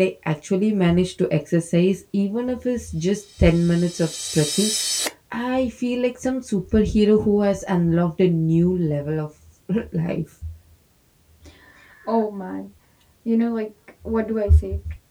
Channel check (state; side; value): identical; both; correlation 1.00